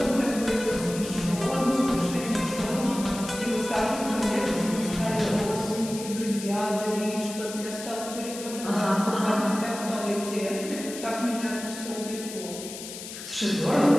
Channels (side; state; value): left; noise; hiss, 11 dB below the sound